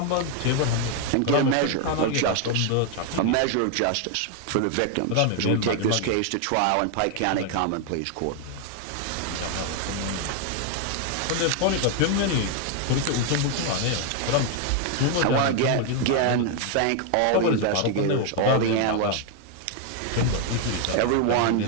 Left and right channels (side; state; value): both; different; correlation 0.01